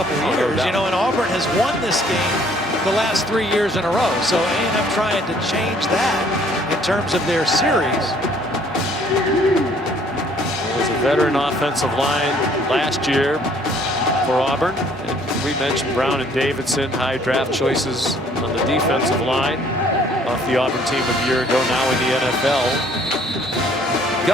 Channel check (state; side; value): normal; both; correlation 0.60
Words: of years. You know, and Auburn has won this game the last 3 years in a row. So A&M trying to change that in terms of their series. It was a veteran offensive line last year for Auburn. And we mentioned Brown and Davidson, high draft choices on the defensive line off the Auburn team a year ago, now in the NFL.